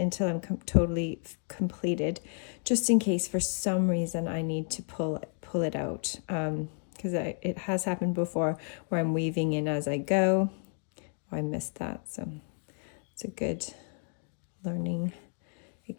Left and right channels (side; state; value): right; silent; 57 dB below the other